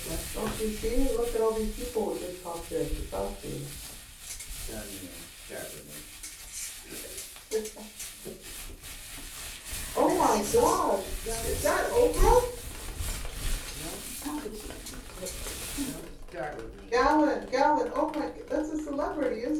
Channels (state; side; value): identical; both; correlation 1.00